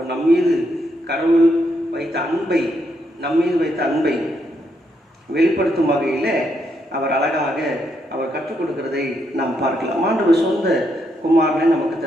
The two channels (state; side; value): normal; both; correlation 0.78